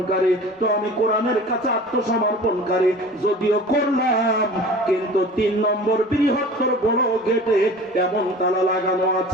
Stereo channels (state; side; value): normal; both; correlation 0.41